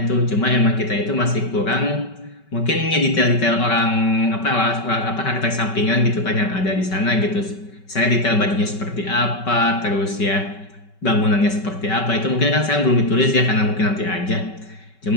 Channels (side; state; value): right; late; 5.3 ms